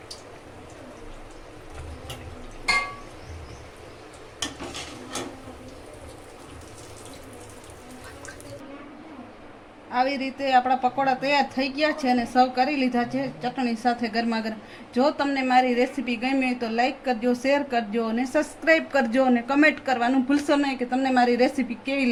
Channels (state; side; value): identical; both; correlation 1.00